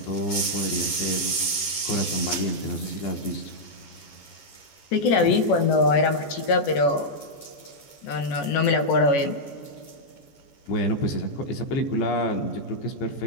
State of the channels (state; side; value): late; right; 14 ms